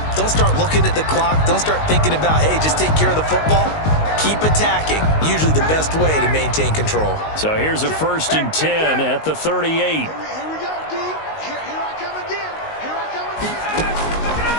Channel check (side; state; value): right; late; 19 ms